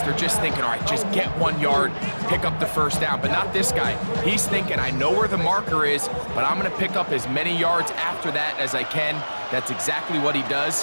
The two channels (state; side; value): inverted; both; correlation -1.00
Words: just thinking, all right, just get 1 yard, pick up the first down. But not this guy. He's thinking, I know where the marker is, but I'm going to pick up as many yards after that as I can. That's exactly what he